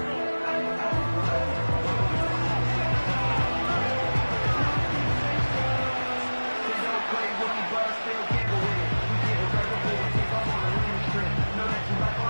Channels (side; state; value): both; inverted; correlation -1.00